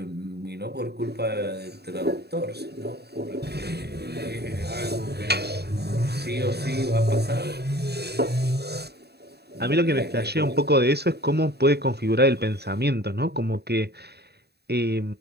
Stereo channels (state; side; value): late; left; 0.48 ms